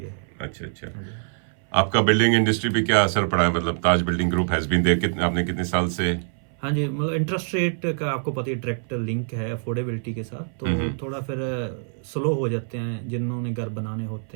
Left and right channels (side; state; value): left; silent; 60 dB below the other